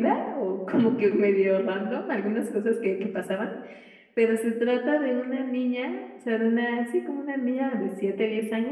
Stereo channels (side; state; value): both; identical; correlation 1.00